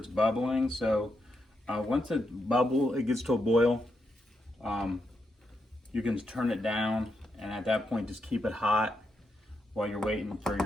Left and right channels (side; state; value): both; normal; correlation 0.83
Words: bubbling. So once it gets to a boil, you can turn it down, and at that point, just keep it hot while you're waiting for